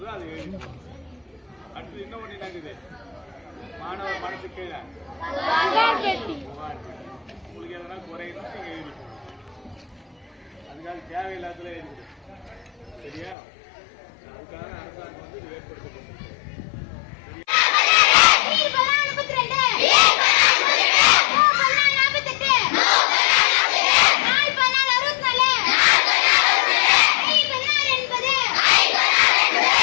அது எழுதணும். அடுத்து இன்னும் ஒண்ணு என்னங்குது? மாணவர் மனசு கீழே உங்களுக்கு எதனா குறையணும் நீங்க எழுதிக்கணும். அதுக்காக தேவையில்லாததுல எழுதிக்கணும். சரியா? அதுக்காக அரசாங்கம் வந்து இது ஏற்படுத்தப்படும்.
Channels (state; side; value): drops out; right; at 13.4 s